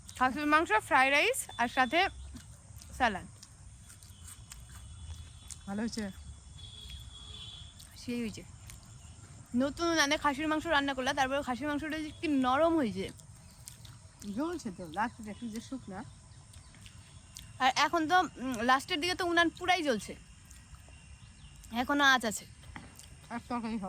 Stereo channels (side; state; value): both; identical; correlation 1.00